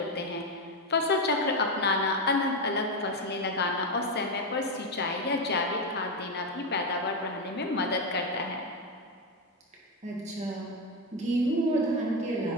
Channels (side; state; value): both; normal; correlation 0.09